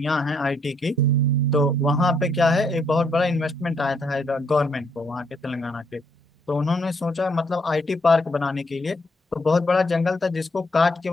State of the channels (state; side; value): normal; both; correlation 0.72